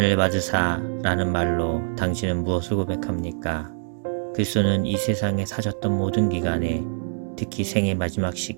받으사 라는 말로 당신은 무엇을 고백합니까? 그리스도는 이 세상에 사셨던 모든 기간에 특히 생의 마지막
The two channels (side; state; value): left; silent; 62 dB below the other